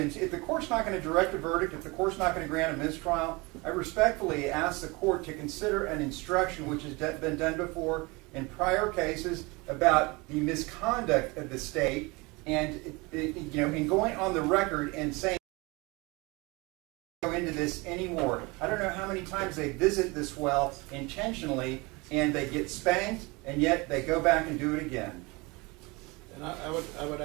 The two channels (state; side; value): quieter; left; 25.6 dB